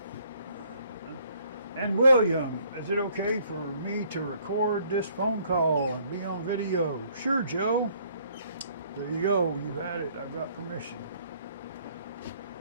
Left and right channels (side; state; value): both; inverted; correlation -0.63